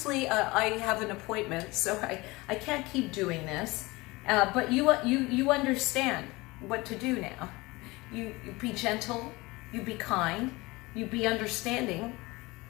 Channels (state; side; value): quieter; right; 22.4 dB